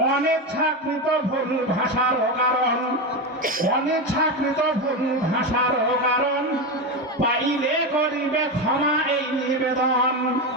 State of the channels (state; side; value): normal; both; correlation 0.15